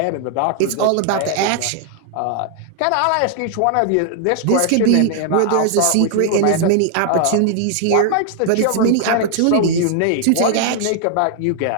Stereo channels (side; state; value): both; different; correlation 0.00